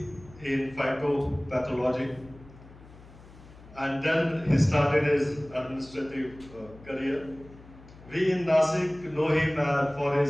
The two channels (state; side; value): noise; left; hum, 21 dB below the sound